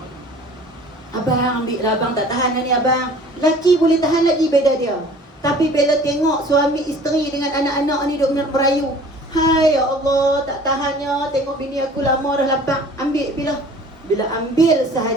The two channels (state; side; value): normal; both; correlation 0.48